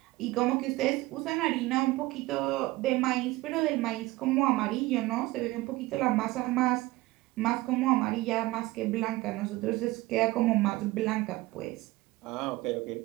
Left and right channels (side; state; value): left; quieter; 19.5 dB